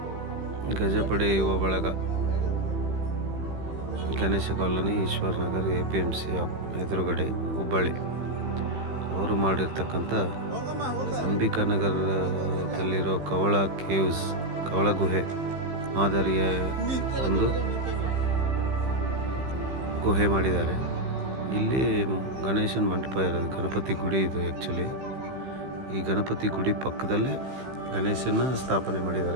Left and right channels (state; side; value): late; left; 15 ms